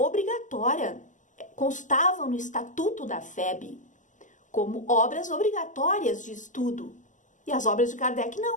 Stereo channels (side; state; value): right; late; 0.37 ms